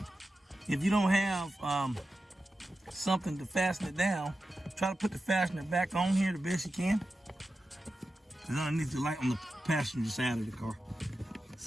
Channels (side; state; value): both; normal; correlation 0.92